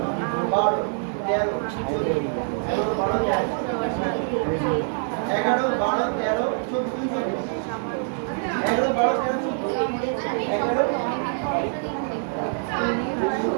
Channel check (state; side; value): silent; left; 62 dB below the other